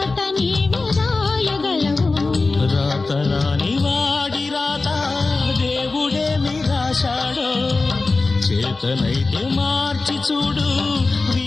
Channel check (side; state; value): right; quieter; 3.7 dB